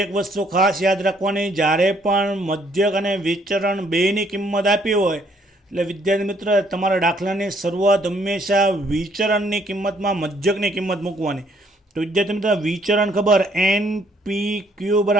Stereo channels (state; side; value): normal; both; correlation 0.66